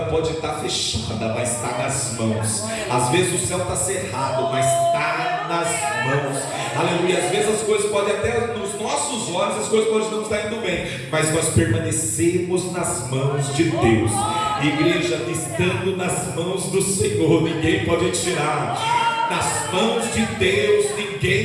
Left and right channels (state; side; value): identical; both; correlation 1.00